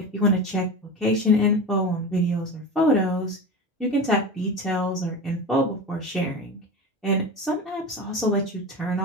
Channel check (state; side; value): normal; both; correlation 0.27